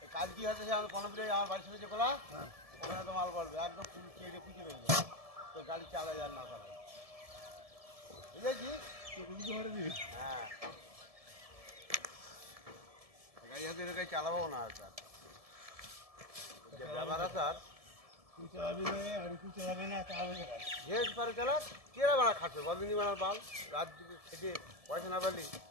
কাজ কি হচ্ছে সে আমার পনেরো আমার বাড়ির সামনে যে কোলা ওখানে তো মাল পড়বে একদম কেটে পুঁজে রয়ে যাবে তোর গাড়ি চালা যার না করা বুঝেছি। হ্যাঁ গাড়ি হাতে গাড়ি চালাবো না আর স্যার যে ব্যাপার আছে আর তুই চালাবি না আর তুই চালাবি না চালাবে যে পারে চালা কেরা বানা খাচ্ছে বদিনী বানার বাল রাত দিকে খেটে পয়সা না পারলি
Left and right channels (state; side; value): late; left; 1.7 ms